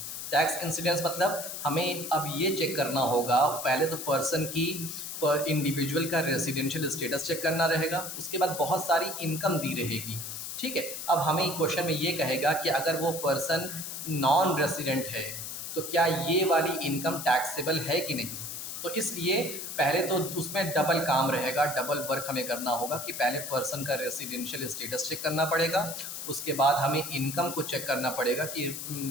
टैक्स इंसिडेंस मतलब हमें अब ये चेक करना होगा, पहले तो पर्सन की, इंडिविजुअल का रेसिडेंशियल स्टेटस चेक करना रहेगा, उसके बाद बहुत सारी इनकम दी रहेगी। ठीक है, अब हमें क्वेश्चन में ये कहेगा कि अगर वो पर्सन नॉन रेसिडेंट है तो क्या ये वाली इनकम टैक्सेबल है कि नहीं। तो इसलिए पहले तो उसमें डबल काम रहेगा, डबल वर्क हमें करना होगा कि पहले पर्सन का रेसिडेंशियल स्टेटस चेक करना पड़ेगा, उसके बाद हमें इनकम को चेक करना पड़ेगा कि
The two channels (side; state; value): left; noise; hiss, 7 dB below the sound